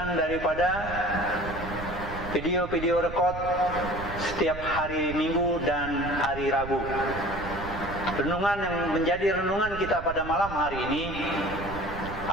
daripada video-video rekod setiap hari Minggu dan hari Rabu. Renungan yang menjadi renungan kita pada malam hari ini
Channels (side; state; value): right; noise; rumble, 11 dB below the sound